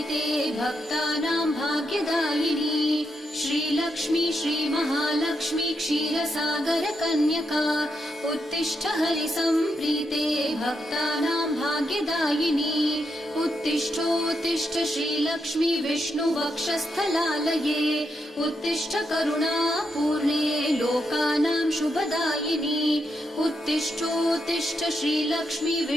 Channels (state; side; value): normal; both; correlation 0.82